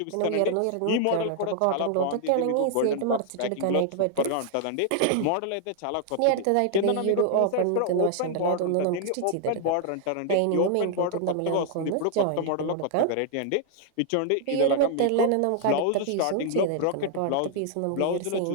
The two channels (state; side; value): different; both; correlation 0.00